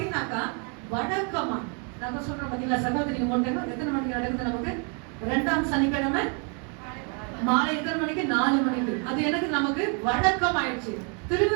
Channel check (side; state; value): left; quieter; 37.9 dB